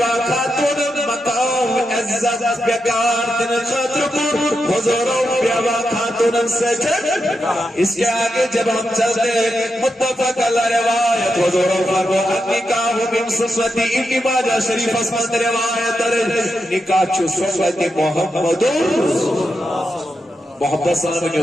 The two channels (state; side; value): normal; both; correlation 0.86